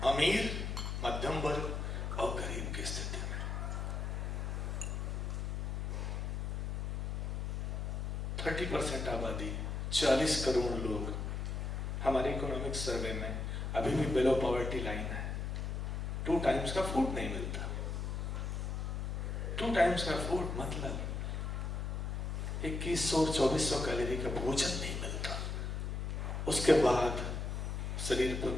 अमीर, मध्यम वर्ग और गरीब की स्थिति में। 30% आबादी, 40 करोड़ लोग हमारे इकोनॉमिक सर्वे में अभी भी बिलो पॉवर्टी लाइन है। 2 टाइम्स का फूड नहीं मिलता। 2 टाइम्स का फूड मतलब 2100-2400 कैलोरी का भोजन नहीं मिलता। उसके बाद शरीर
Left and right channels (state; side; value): noise; left; hum, 2 dB below the sound